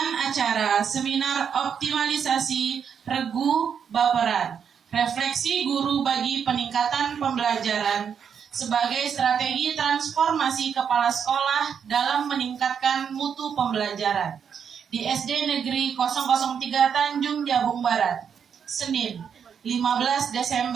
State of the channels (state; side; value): quieter; left; 7.4 dB